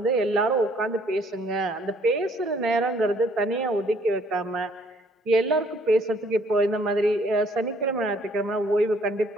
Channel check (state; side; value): normal; both; correlation 0.62